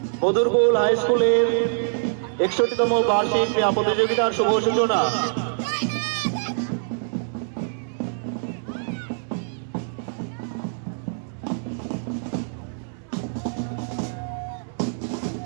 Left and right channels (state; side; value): silent; left; digital silence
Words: মধুরকুল হাই স্কুলের 61তম বার্ষিক ক্রীড়া প্রতিযোগিতার শুভ সূচনা।